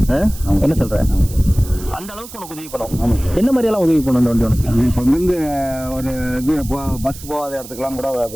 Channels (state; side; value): noise; right; hiss, 16 dB below the sound